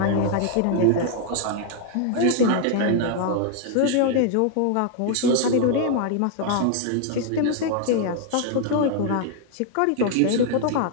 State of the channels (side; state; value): both; different; correlation 0.00